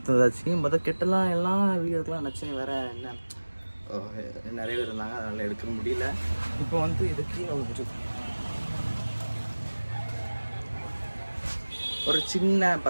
மொதல் கெட்டெல்லாம் எல்லாம் வீடியோக்கெலாம் நினச்சேன், வேறு என்ன நிறைய பேர் இருந்தாங்க, அதனால் எடுக்க முடியல. இப்போ வந்து இதுக்கு ஒரு சின்ன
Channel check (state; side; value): inverted; both; correlation -1.00